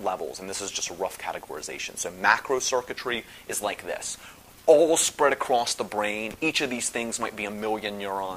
levels, and this is just a rough categorization. So macro circuitry is like this, all spread across the brain. Each of these things might be a million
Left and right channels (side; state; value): both; identical; correlation 1.00